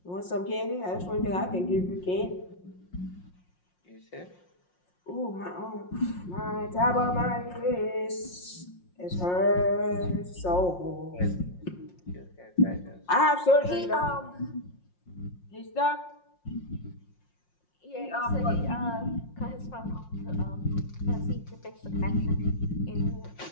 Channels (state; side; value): late; right; 5.6 ms